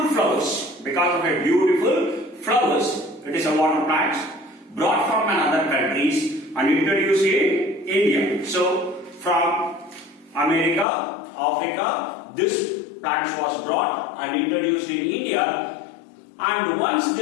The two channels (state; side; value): drops out; right; at 10.9 s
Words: flowers. Because of a beautiful flowers, it is a water plant brought from another countries and introduced in India. So from America, Africa, this plant was brought and introduced in India. And once